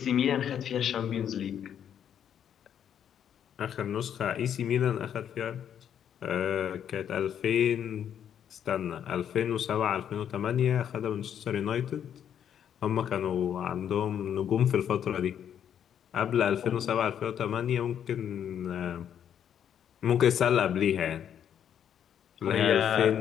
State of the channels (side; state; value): right; quieter; 9.1 dB